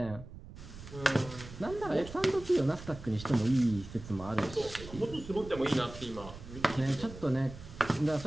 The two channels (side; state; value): right; noise; rumble, 14 dB below the sound